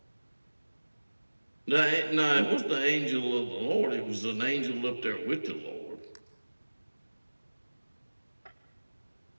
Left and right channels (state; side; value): inverted; both; correlation -1.00